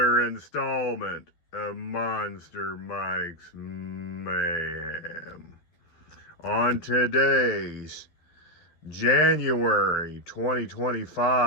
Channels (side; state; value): right; late; 12 ms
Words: installment of Monster Mike's Mayhem. On today's January